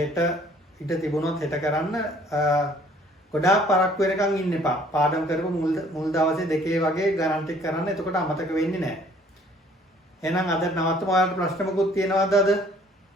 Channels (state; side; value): normal; both; correlation 0.57